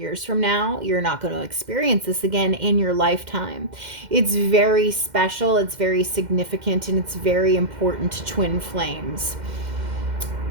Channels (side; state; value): left; late; 2.1 ms